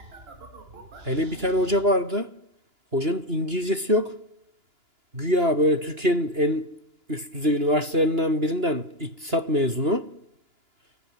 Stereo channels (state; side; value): late; left; 2.9 ms